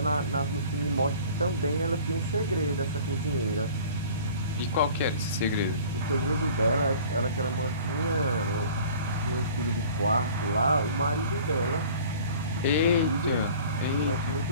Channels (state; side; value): inverted; both; correlation -0.46